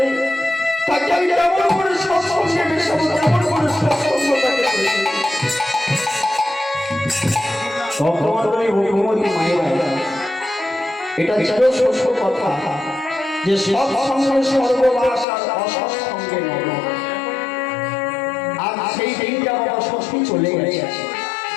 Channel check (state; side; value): drops out; right; at 15.2 s